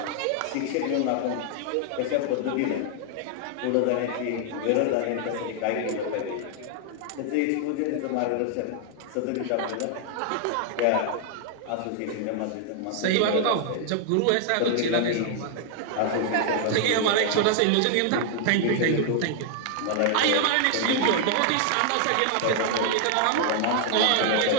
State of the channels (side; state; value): both; different; correlation 0.00